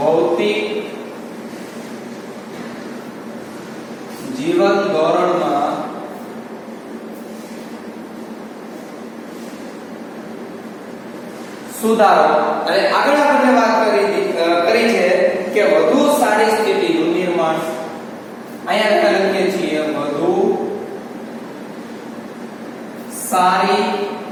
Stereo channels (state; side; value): identical; both; correlation 1.00